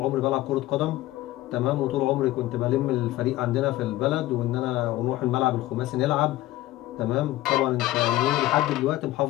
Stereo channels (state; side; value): quieter; right; 16.1 dB